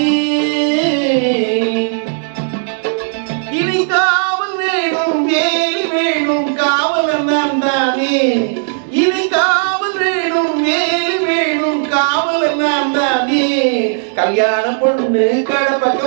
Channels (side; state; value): left; silent; digital silence